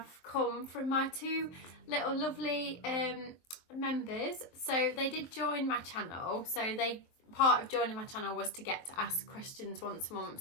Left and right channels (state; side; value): late; right; 23 ms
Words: come from my two little lovely members. So they did join my channel, so part of joining my channel was to get to ask questions once a month.